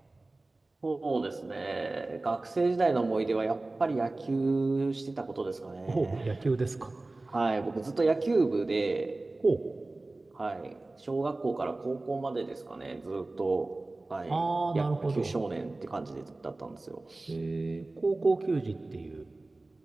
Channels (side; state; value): left; quieter; 3.0 dB